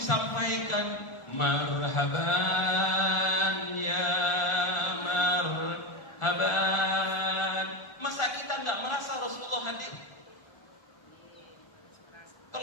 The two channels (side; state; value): right; late; 1.4 ms